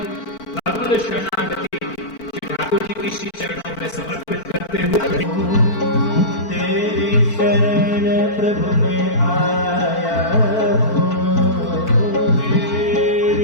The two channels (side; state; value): right; late; 4.5 ms